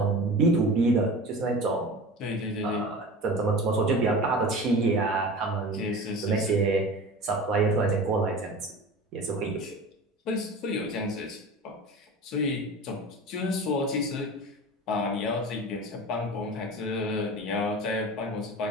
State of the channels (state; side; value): normal; both; correlation 0.34